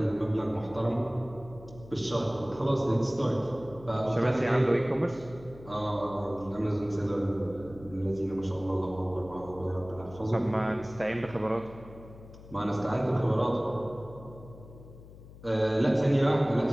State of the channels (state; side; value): noise; left; hum, 18 dB below the sound